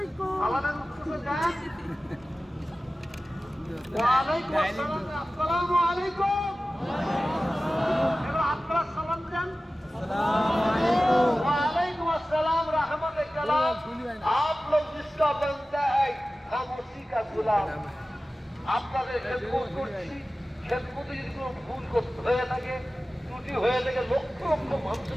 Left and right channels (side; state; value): both; normal; correlation 0.96